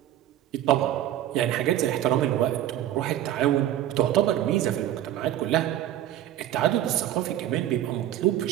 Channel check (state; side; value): quieter; left; 12.4 dB